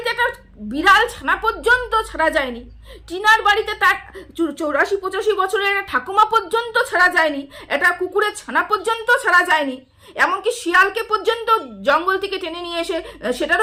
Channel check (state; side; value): identical; both; correlation 1.00